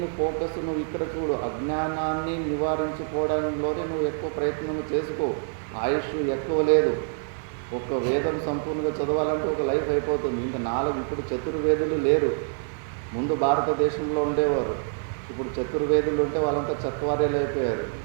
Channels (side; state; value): left; silent; 60 dB below the other